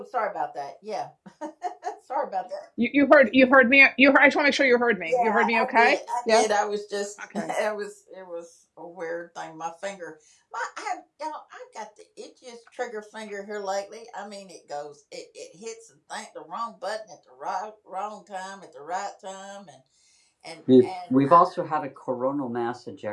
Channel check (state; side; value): identical; both; correlation 1.00